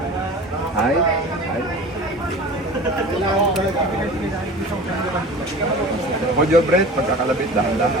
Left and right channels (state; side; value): normal; both; correlation 0.38